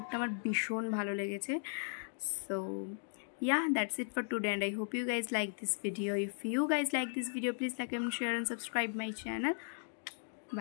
আমার ভীষণ ভালো লেগেছে। So yeah, that's it for today, and I hope you guys like this video. If you guys like this video, please like and share and subscribe my channel.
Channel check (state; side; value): silent; right; digital silence